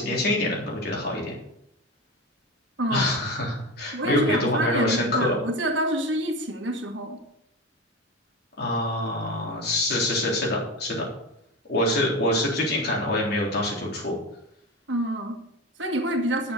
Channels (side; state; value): both; normal; correlation 0.25